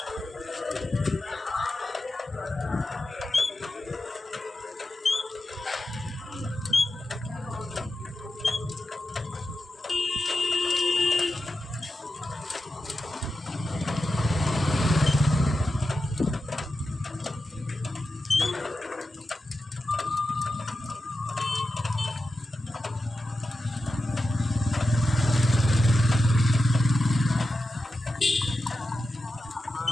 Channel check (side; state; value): both; normal; correlation 0.90